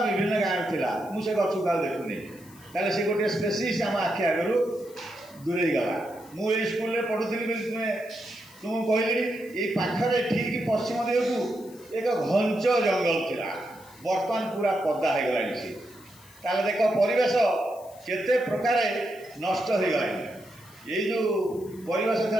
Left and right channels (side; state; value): left; noise; hiss, 24 dB below the sound